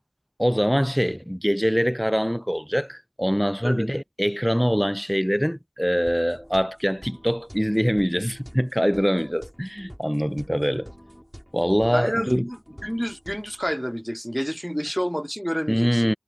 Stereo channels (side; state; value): both; identical; correlation 1.00